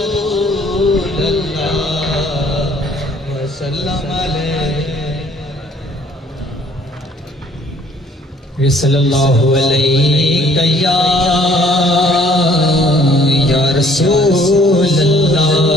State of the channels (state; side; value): normal; both; correlation 0.58